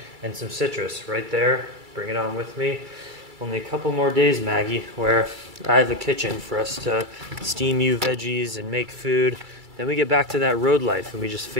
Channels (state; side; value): late; left; 2.3 ms